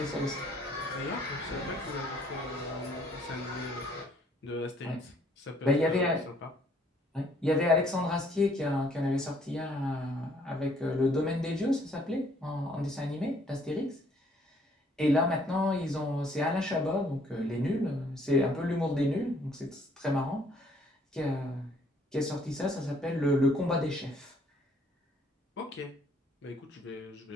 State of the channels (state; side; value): normal; both; correlation 0.63